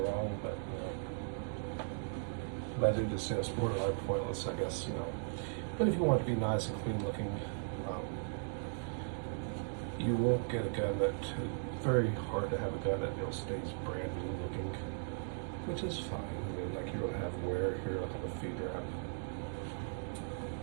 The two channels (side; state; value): left; silent; digital silence